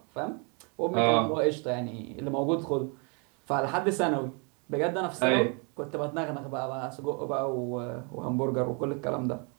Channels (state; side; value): quieter; left; 35.8 dB